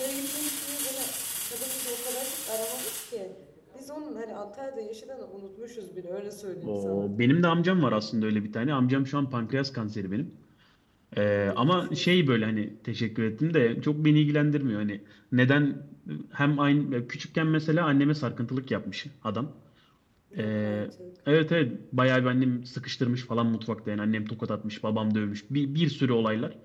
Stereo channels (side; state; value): both; identical; correlation 1.00